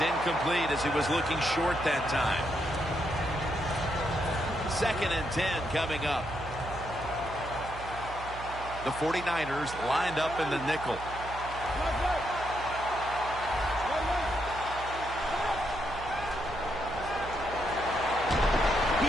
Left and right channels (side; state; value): right; noise; hum, 12 dB below the sound